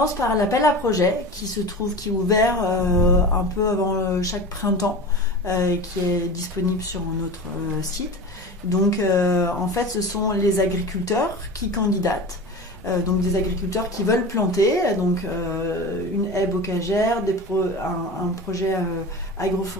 par l'appel à projet qui est ouvert un peu avant chaque printemps, qui est disponible sur notre site. Donc, en fait, ce sont les agriculteurs qui candidatent. Donc, des agriculteurs qui veulent planter, donc une haie bocagère, un projet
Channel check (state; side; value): normal; both; correlation 0.31